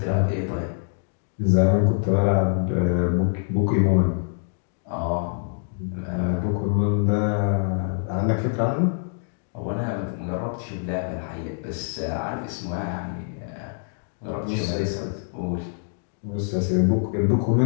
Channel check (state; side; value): silent; right; digital silence